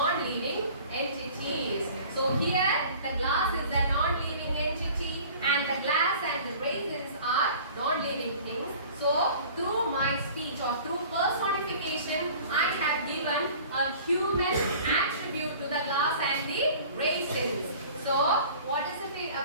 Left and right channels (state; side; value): inverted; both; correlation -0.46